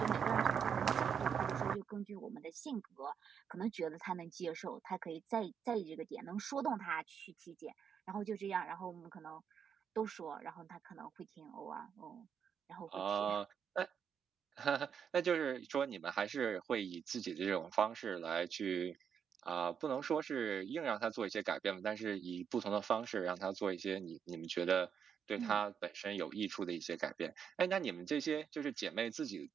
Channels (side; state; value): left; quieter; 7.5 dB